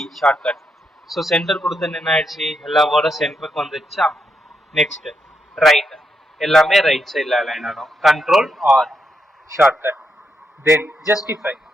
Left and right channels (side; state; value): both; normal; correlation 0.81